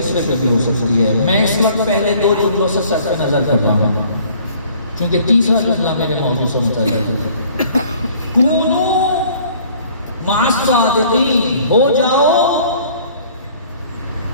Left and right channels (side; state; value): both; inverted; correlation -0.55